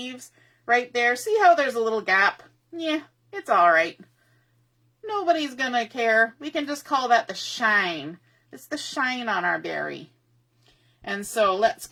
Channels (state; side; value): identical; both; correlation 1.00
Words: right there. See how there's a little gap? Yeah, it's all right. Nobody's going to care. We can just call that the shine. It's the shine on our berry. And so let's